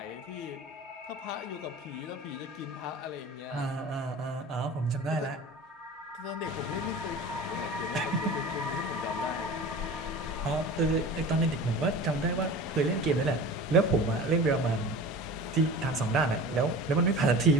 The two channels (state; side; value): normal; both; correlation 0.37